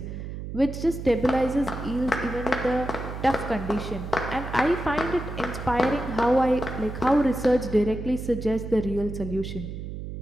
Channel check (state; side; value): noise; right; hum, 8 dB below the sound